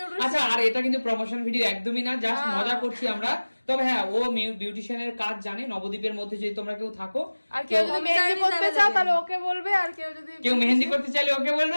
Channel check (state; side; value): inverted; both; correlation -1.00